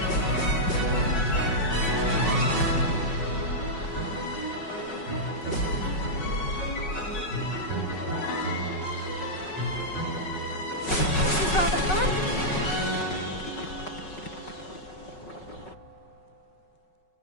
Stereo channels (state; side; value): late; right; 5.4 ms